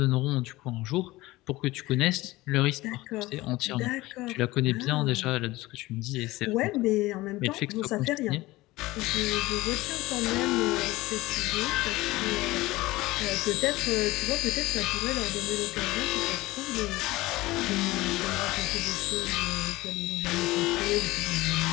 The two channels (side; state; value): right; quieter; 19.3 dB